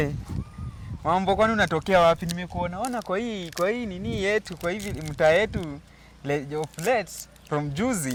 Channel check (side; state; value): both; identical; correlation 1.00